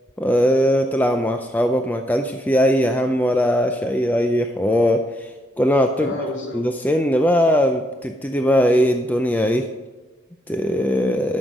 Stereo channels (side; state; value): both; normal; correlation 0.76